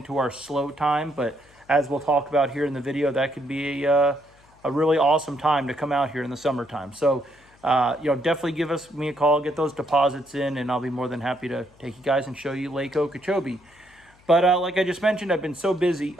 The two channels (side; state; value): left; noise; hum, 29 dB below the sound